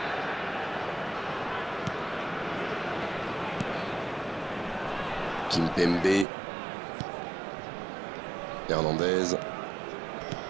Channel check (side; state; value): left; drops out; at 6.2 s